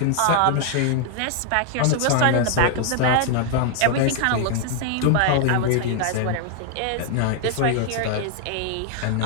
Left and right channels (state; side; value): different; both; correlation 0.00